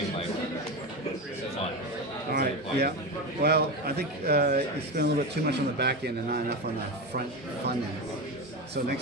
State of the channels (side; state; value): both; normal; correlation 0.19